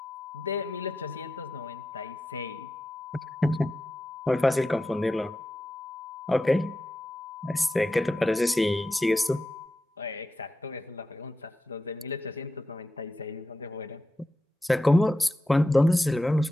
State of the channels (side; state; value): both; normal; correlation 0.90